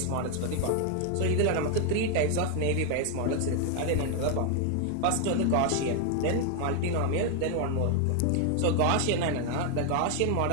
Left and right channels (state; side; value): different; both; correlation 0.00